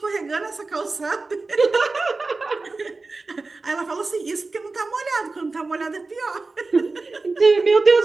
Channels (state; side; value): quieter; left; 3.7 dB